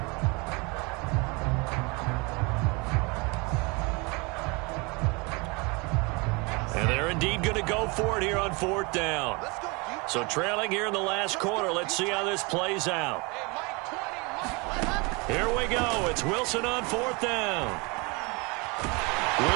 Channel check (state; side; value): quieter; left; 28.3 dB